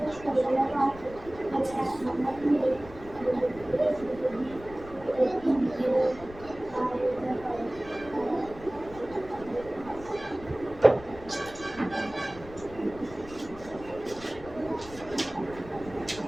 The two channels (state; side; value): noise; left; rumble, 17 dB below the sound